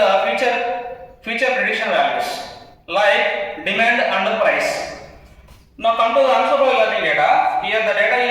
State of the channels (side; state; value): both; identical; correlation 1.00